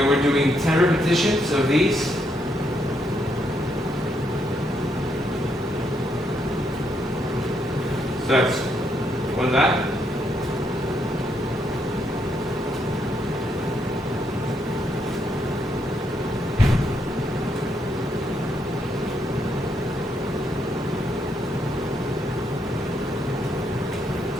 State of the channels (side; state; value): both; normal; correlation 0.76